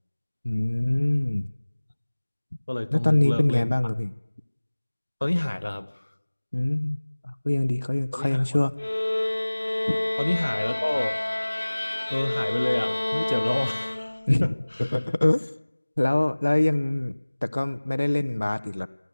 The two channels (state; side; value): inverted; both; correlation -1.00